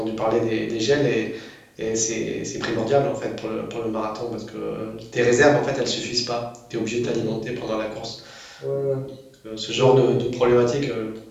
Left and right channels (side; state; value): both; identical; correlation 1.00